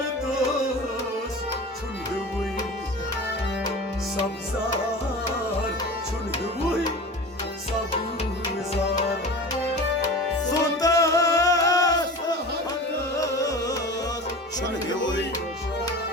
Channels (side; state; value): both; normal; correlation 0.34